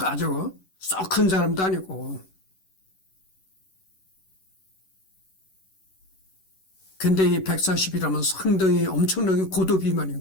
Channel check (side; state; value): right; late; 11 ms